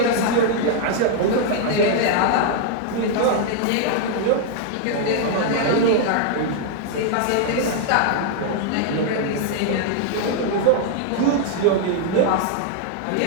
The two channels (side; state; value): both; different; correlation 0.00